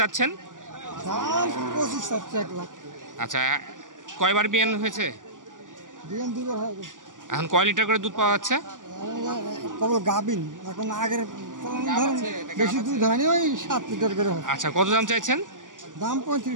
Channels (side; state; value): left; late; 0.88 ms